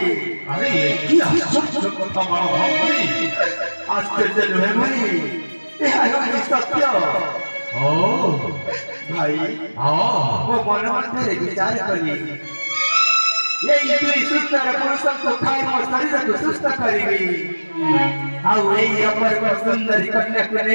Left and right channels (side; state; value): both; inverted; correlation -1.00